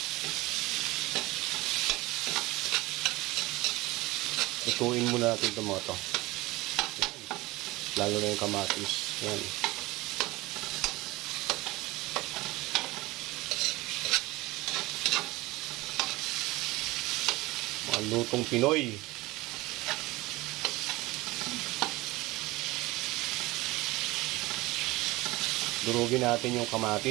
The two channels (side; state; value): left; quieter; 20.5 dB